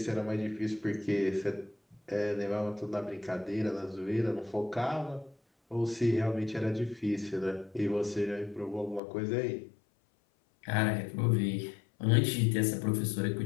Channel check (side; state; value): right; drops out; at 9.0 s